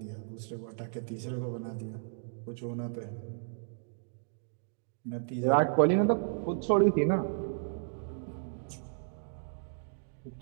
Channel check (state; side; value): silent; left; digital silence